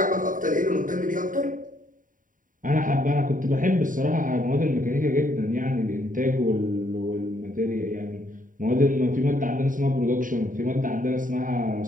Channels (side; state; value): left; late; 0.39 ms